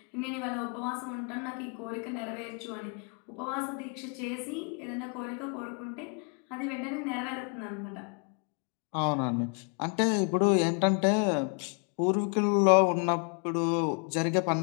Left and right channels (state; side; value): quieter; right; 39.6 dB